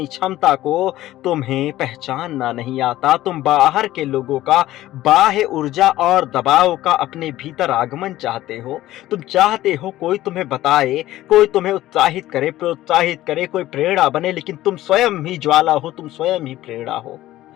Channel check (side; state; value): right; quieter; 15.1 dB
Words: क्षमता को तुम्हें पहचानना नहीं आता। तुम बाहर के लोगों का बाह्य ऊर्जा और दबाव का अपने भीतर आगमन चाहते हो। तुम चाहते हो कोई तुम्हें बताए, कोई तुम्हें उत्साहित करे, प्रोत्साहित करे, कोई प्रेरणा बने, लेकिन तुम स्वयं ही ज्वाला हो, तुम स्वयं ही प्रेरणा हो।